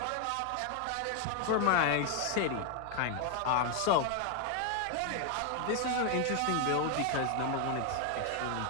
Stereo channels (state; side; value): different; both; correlation 0.01